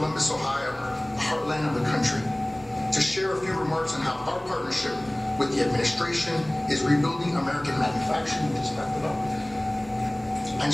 Ohio, the heartland of the country, to share a few remarks on how our partnership with the administration is rebuilding American manufacturing, and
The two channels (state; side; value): noise; left; hum, 27 dB below the sound